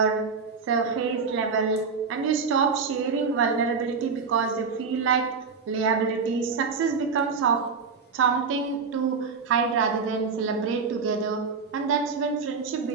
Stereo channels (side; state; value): left; quieter; 5.2 dB